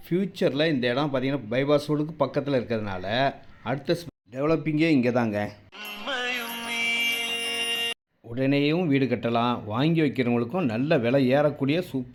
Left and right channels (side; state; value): both; identical; correlation 1.00